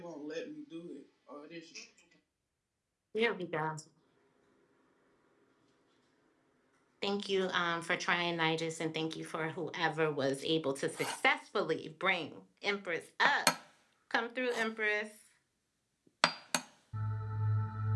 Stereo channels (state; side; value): identical; both; correlation 1.00